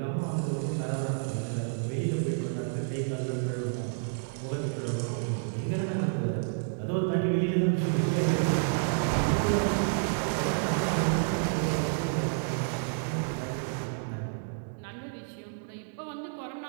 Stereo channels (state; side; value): silent; left; digital silence